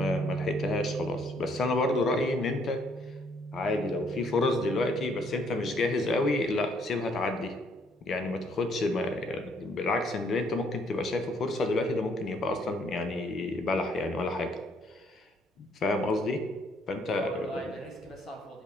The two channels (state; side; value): normal; both; correlation 0.67